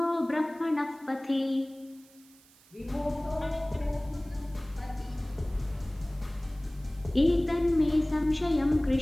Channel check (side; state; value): right; noise; hiss, 27 dB below the sound